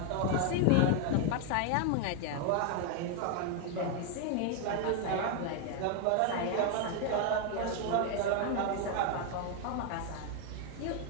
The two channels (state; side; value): different; both; correlation 0.00